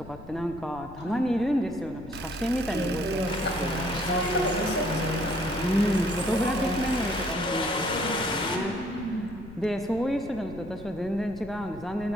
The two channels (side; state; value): left; noise; rumble, 16 dB below the sound